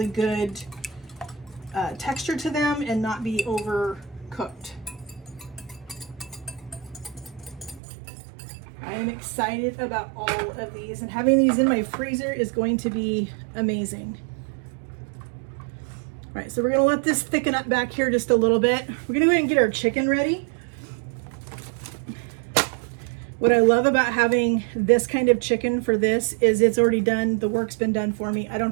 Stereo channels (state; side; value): drops out; left; at 7.8 s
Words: good texture to them and not be overcooked. I am excited about all of these, and having these in my freezer is going to be amazing. All right, so we're gonna let this thicken up back here just a little bit. We're gonna go ahead and get our chicken ready. What I love about having this kind of chicken for this is it's already done. The work's been done for me. I don't